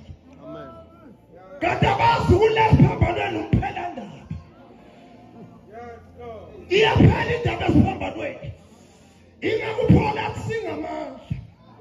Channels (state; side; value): identical; both; correlation 1.00